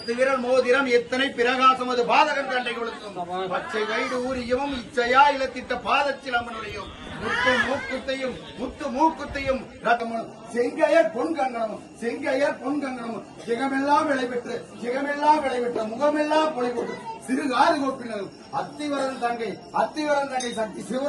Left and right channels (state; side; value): identical; both; correlation 1.00